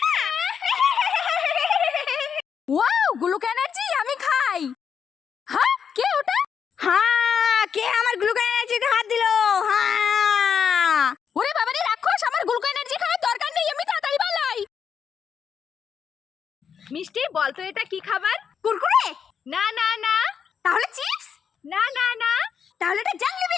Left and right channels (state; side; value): quieter; right; 7.2 dB